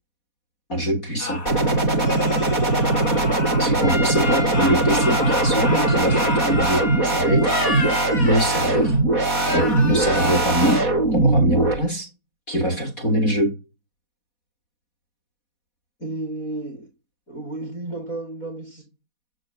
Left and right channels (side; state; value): right; late; 4.1 ms